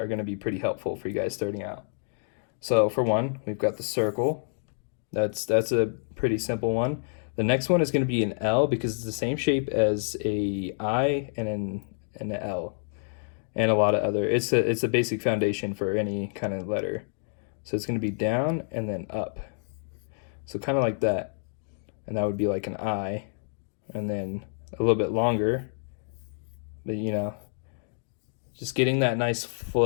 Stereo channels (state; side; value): silent; right; digital silence